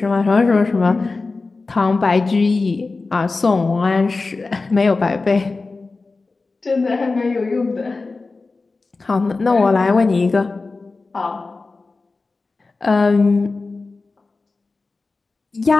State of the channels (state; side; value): quieter; right; 3.8 dB